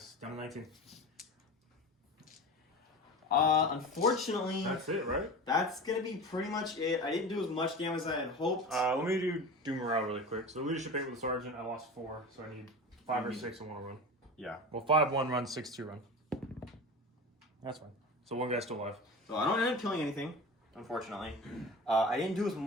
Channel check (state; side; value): normal; both; correlation 0.31